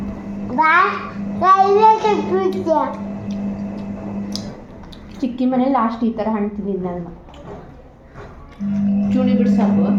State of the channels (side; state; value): both; identical; correlation 1.00